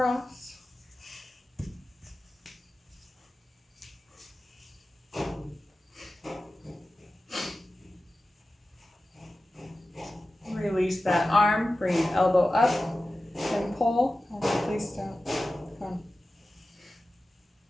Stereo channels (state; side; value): normal; both; correlation 0.94